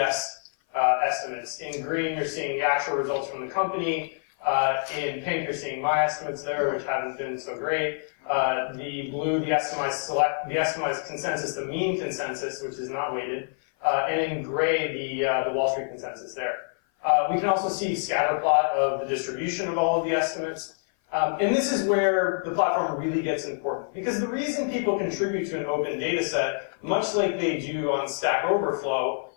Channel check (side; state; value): right; silent; 56 dB below the other